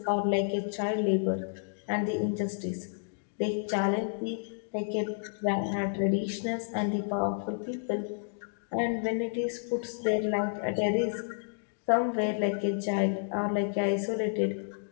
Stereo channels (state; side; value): silent; right; digital silence